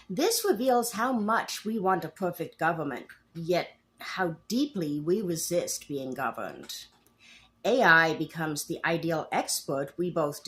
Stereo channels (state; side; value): identical; both; correlation 1.00